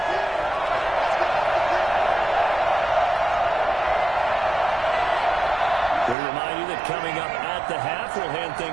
remind you that coming up at the half, we'll hand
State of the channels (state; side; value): drops out; left; at 6.2 s